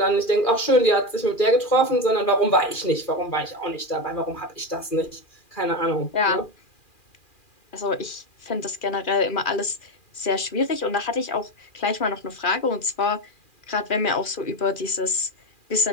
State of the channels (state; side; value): late; right; 2.4 ms